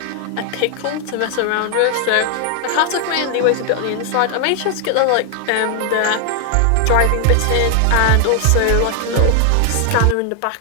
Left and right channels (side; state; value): both; different; correlation 0.00